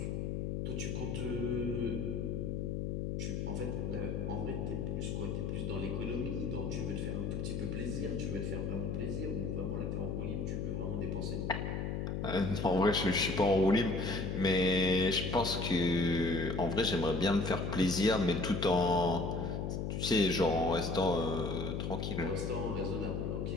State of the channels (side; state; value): left; noise; hum, 2 dB below the sound